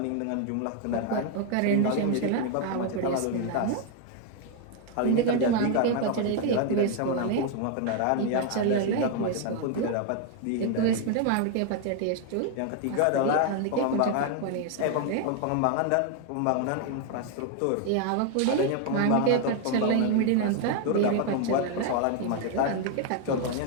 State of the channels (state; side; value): different; both; correlation 0.01